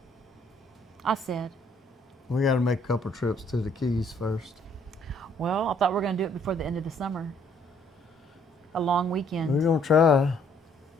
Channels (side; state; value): both; normal; correlation 0.64